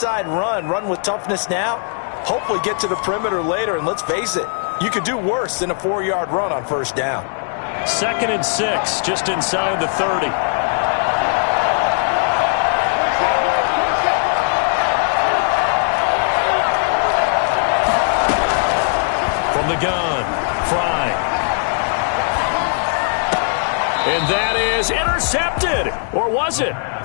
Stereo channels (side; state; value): right; silent; 67 dB below the other